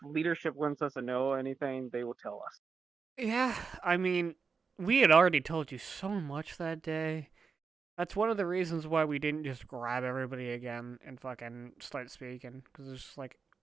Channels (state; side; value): quieter; left; 5.2 dB